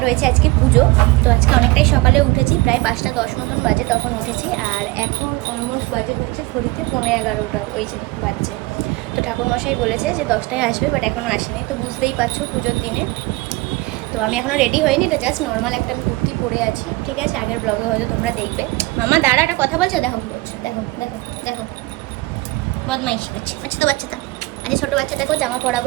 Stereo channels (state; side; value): quieter; left; 21.8 dB